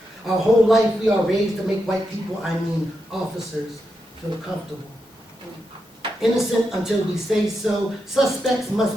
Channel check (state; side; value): normal; both; correlation 0.85